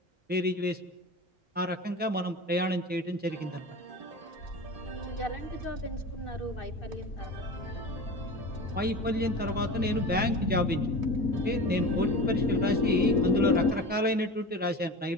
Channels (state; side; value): normal; both; correlation 0.31